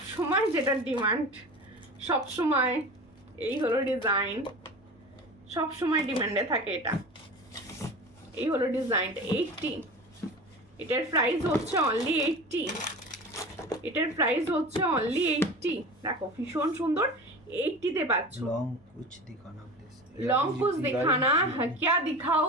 যেটা ডিমান্ড, সবসময় এই হলো ডিজাইন, সবসময় ডিমান্ডে থাকে এটা। এই হলো ডিজাইনটা 80, এটার প্রাইস হচ্ছে অনলি 80, এটার প্রাইস হচ্ছে অনলি 80। দেখো ভীষণ সুন্দর, 80-তে পাচ্ছ। লং কুছ দিখানা প্লিজ, लॉन्ग कुछ दिखाना है, क्या दिखाओ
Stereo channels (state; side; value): normal; both; correlation 0.33